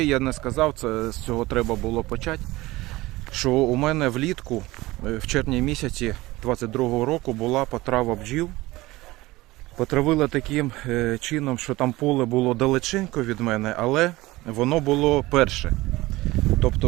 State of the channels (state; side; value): quieter; left; 19.4 dB